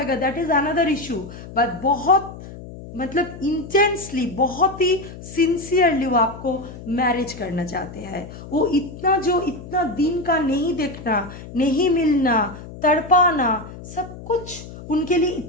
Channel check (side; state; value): left; noise; hum, 14 dB below the sound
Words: that is another issue, but बहुत मतलब इंटेंसली, बहुत ही सिंसियरली वो आपको मैरिज करना चाहते हैं। वो इतना दिन का नहीं देखना, नहीं मिलना, तड़पाना, सब कुछ उनके लिए